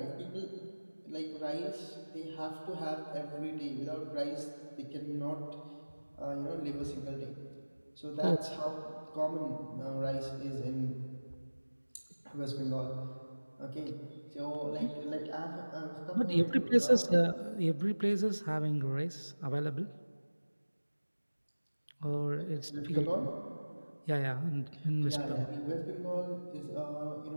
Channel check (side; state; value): both; inverted; correlation -1.00